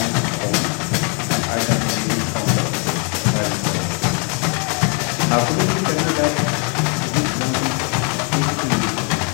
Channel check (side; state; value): right; quieter; 37.3 dB